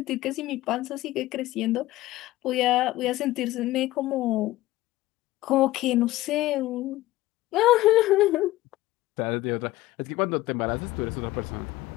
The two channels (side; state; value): right; quieter; 16.9 dB